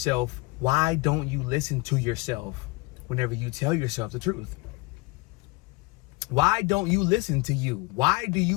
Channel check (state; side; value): quieter; right; 24.0 dB